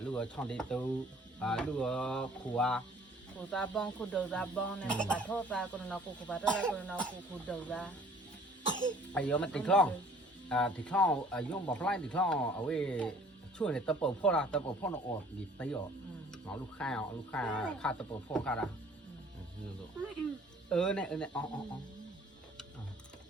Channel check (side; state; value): both; normal; correlation 0.54